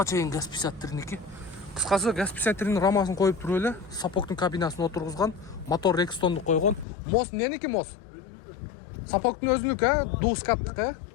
чейин газ 53-ники. Кыскасы газ 53-нин рамасын коюп туруп эле, сапогдун кабинасын отургузган, мотор Rextonду койгон. Мост эмненики мост? Сапогдун өзүнүкү, дускаттык,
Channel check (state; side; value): drops out; right; at 6.9 s